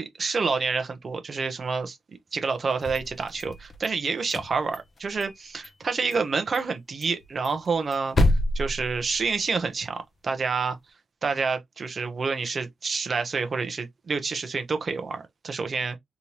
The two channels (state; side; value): quieter; left; 3.1 dB